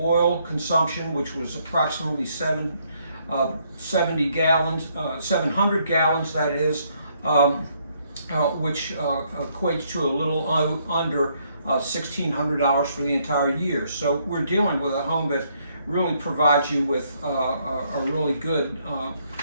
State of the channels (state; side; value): inverted; both; correlation -0.71